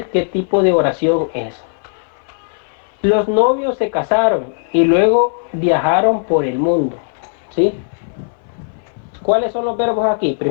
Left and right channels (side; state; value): right; silent; 60 dB below the other